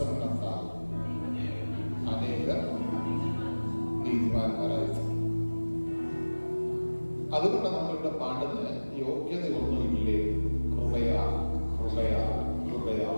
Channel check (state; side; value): inverted; both; correlation -1.00